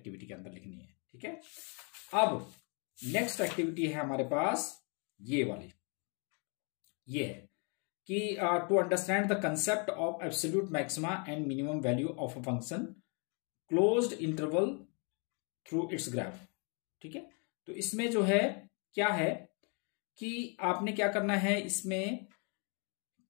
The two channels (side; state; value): right; quieter; 36.3 dB